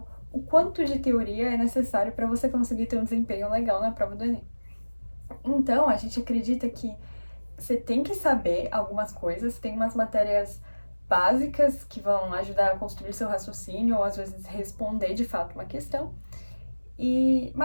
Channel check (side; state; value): both; inverted; correlation -1.00